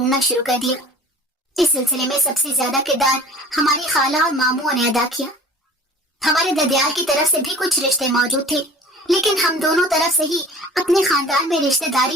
शुरू कर दिया। इस सिलसिले में सबसे ज्यादा किरदार हमारी खाला और मामू ने अदा किया। हमारे ददियाल की तरफ से भी कुछ रिश्ते मौजूद थे, लेकिन हम दोनों तरफ से ही अपने खानदान में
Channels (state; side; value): normal; both; correlation 0.45